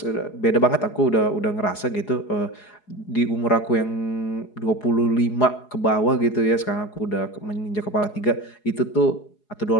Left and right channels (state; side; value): late; right; 4.8 ms